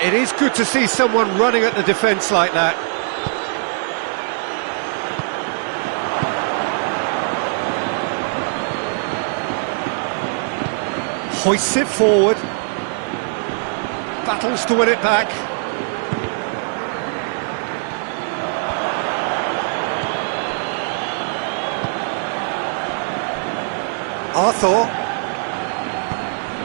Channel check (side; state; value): left; silent; 65 dB below the other